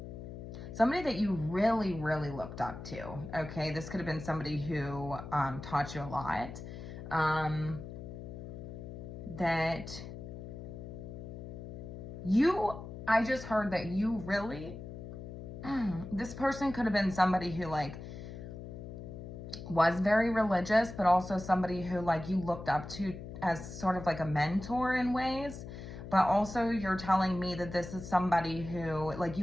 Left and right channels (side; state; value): left; noise; hum, 10 dB below the sound